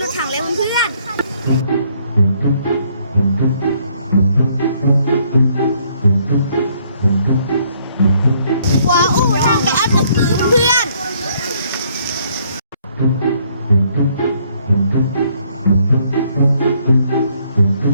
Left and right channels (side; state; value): both; inverted; correlation -0.67